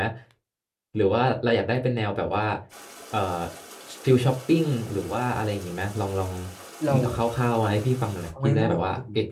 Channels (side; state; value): both; identical; correlation 1.00